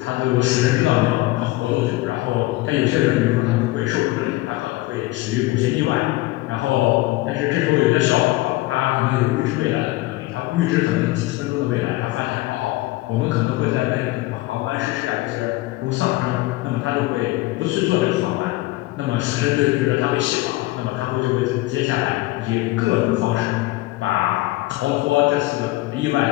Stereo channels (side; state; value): right; quieter; 18.9 dB